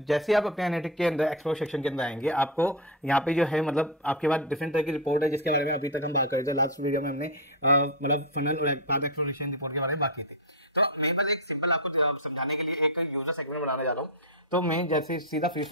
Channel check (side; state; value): both; normal; correlation 0.07